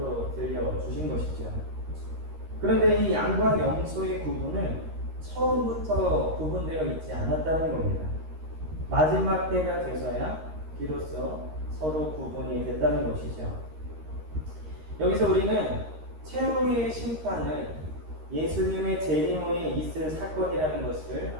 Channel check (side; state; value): left; late; 13 ms